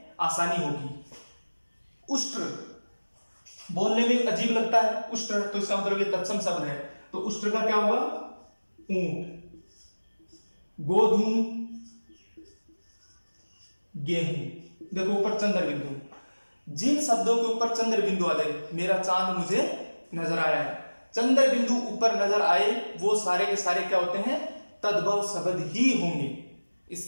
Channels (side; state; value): both; inverted; correlation -1.00